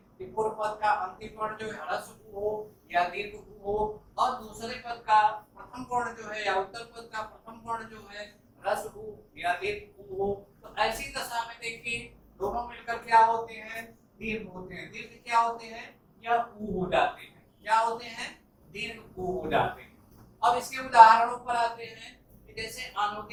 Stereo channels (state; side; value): identical; both; correlation 1.00